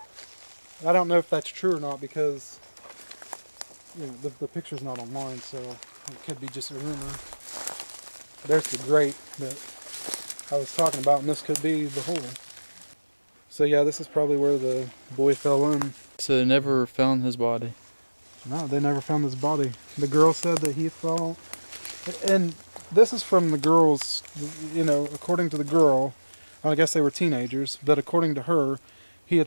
I don't know if that's true or not because you know the picture's not online, so it could be just a rumor. There's the grate that I was talking about, and this could be the hole. So yeah, this is probably where the boy fell in. So they never found his body? No, they never found his body. The girl said that he fell, and this is from the girl's, you know, according to the girl, I guess they were teenagers, but according to her, he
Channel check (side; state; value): both; inverted; correlation -1.00